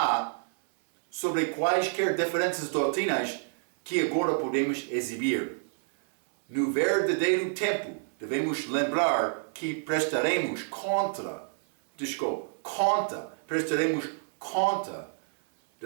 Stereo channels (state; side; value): silent; left; 59 dB below the other